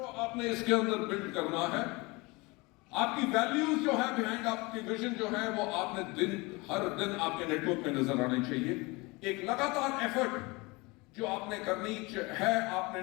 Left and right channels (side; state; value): right; quieter; 25.0 dB